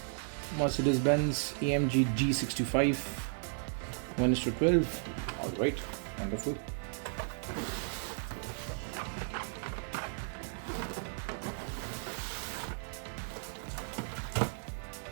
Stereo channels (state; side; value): silent; left; 55 dB below the other